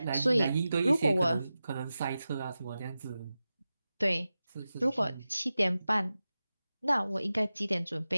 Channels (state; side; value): inverted; both; correlation -0.94